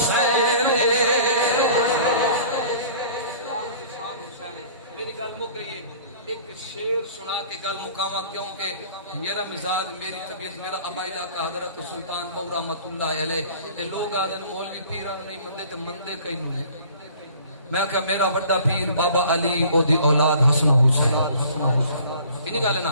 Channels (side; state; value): both; inverted; correlation -0.49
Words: میری گل مک گئی ہے ایک شعر سنا کے گل مقامہ کیونکہ میرا مزاج میری طبیعت میرا عبائدہ کا حضرت سلطان بہو رحمت اللہ علیہ کہ لوگ آدھے مولوی پیران نہیں مندے تے مندے کئی نہیں میں کہا میرا بڑا پیر بابا علی او دی اولاد حسن حسین انہی گالے نا